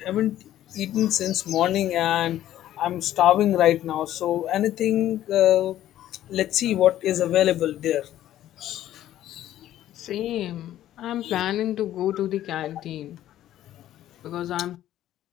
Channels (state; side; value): quieter; right; 12.8 dB